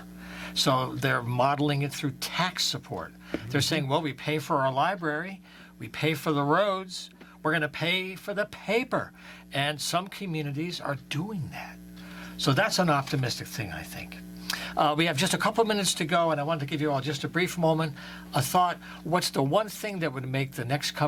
So they're modeling it through tax support. They're saying, well, we pay for our library, we pay for the roads, we're going to pay for the paper. And some communities are doing that. So that's an optimistic thing, I think. We have just a couple minutes to go, and I wanted to give you all just a brief moment, a thought. What's the one thing that would make the next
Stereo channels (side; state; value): both; identical; correlation 1.00